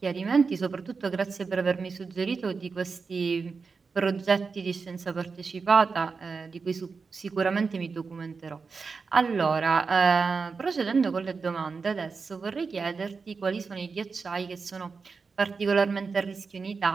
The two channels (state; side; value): quieter; left; 4.8 dB